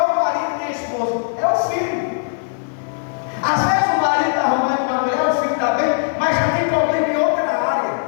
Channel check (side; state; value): right; silent; 61 dB below the other